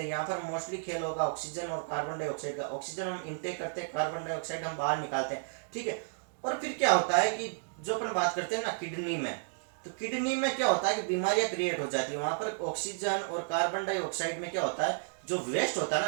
यहाँ पर मोस्टली खेल होगा ऑक्सीजन और कार्बन डाइऑक्साइड का, ऑक्सीजन हम इनटेक करते हैं, कार्बन डाइऑक्साइड हम बाहर निकालते हैं, ठीक है। और फिर क्या होता है कि जो अपन बात करते हैं ना किडनी में, तो किडनी में क्या होता है कि बीमारियां क्रिएट हो जाती है, वहां पर ऑक्सीजन और कार्बन डाइऑक्साइड में क्या होता है, जो वेस्ट होता है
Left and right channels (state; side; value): silent; left; digital silence